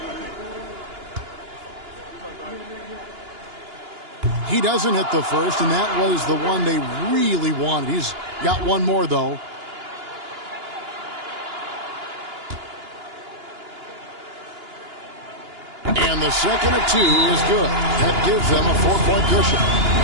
He doesn't hit the first, and that was the one they really wanted. He's got one more, though. And the second of 2 is good. That gives them a 4-point cushion.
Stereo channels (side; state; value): left; late; 2.9 ms